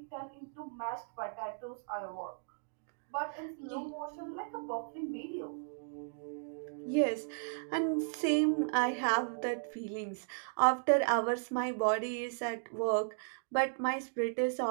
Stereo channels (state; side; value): silent; left; digital silence